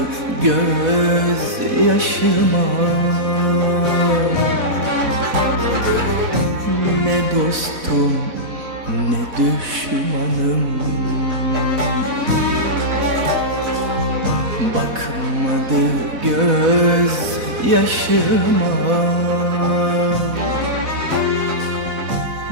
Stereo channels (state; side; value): late; left; 4.1 ms